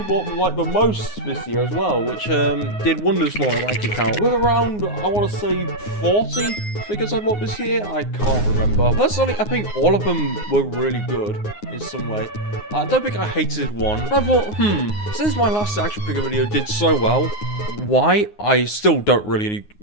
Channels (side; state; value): right; late; 9.6 ms